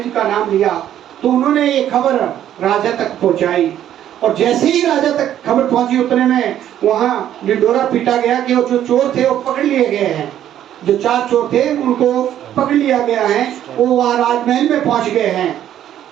जी का नाम लिया तो उन्होंने ये खबर राजा तक पहुँचाई, और जैसे ही राजा तक खबर पहुंची उतने में वहाँ डिंडोरा पीटा गया कि वो जो चोर थे वो पकड़ लिए गए हैं। जो 4 चोर थे उनको पकड़ लिया गया है, वो वहाँ राजमहल में पहुंच गए हैं।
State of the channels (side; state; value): left; quieter; 11.2 dB